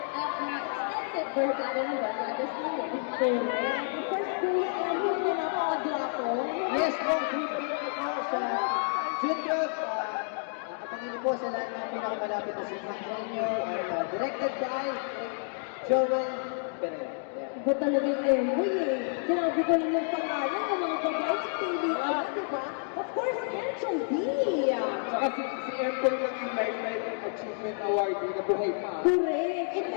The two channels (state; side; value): silent; right; 58 dB below the other